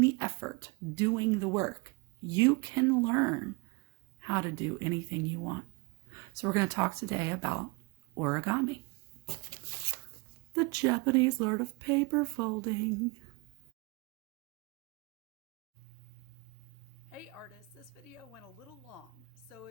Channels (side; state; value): left; quieter; 25.6 dB